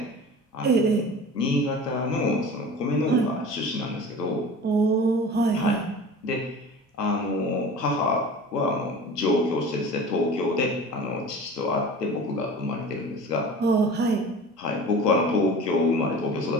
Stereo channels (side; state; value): both; normal; correlation 0.38